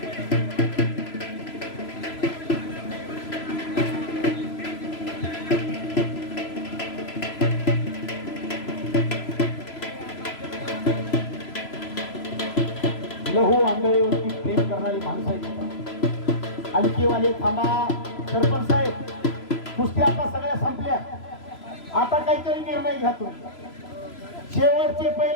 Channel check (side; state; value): right; late; 3.0 ms